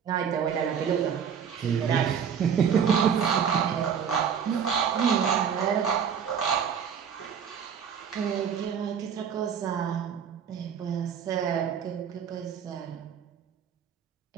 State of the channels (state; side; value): quieter; left; 7.6 dB